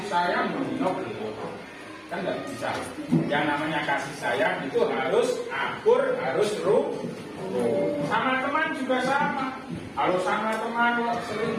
sayang menino belum? kan nggak bisa. Yang namanya kasih sayang itu harus akur, harus sama teman juga sama. Kalau sama teman sering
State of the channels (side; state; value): both; identical; correlation 1.00